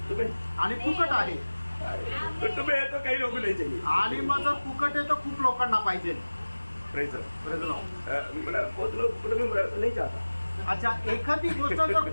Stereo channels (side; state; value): both; inverted; correlation -1.00